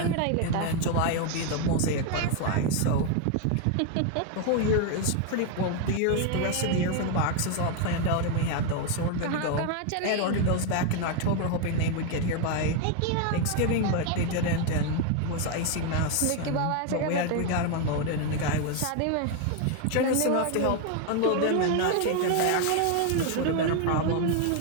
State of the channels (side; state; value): both; different; correlation 0.01